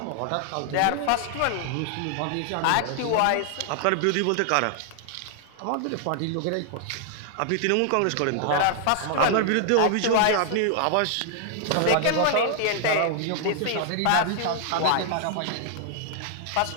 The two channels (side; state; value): both; different; correlation 0.00